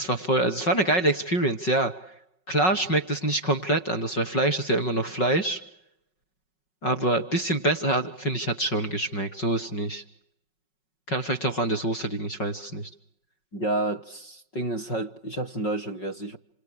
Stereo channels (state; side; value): late; right; 5.4 ms